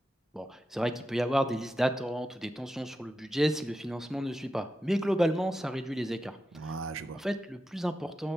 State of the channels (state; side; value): normal; both; correlation 0.89